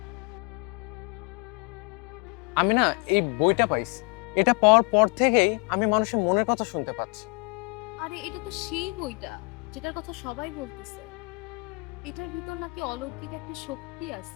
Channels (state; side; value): quieter; right; 31.7 dB